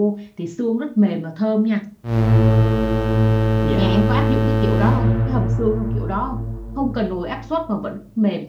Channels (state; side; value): identical; both; correlation 1.00